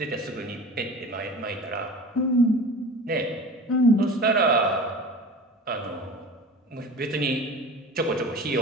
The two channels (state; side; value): normal; both; correlation 0.37